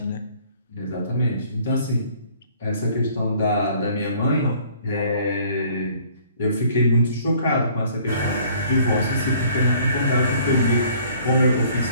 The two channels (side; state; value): both; inverted; correlation -0.56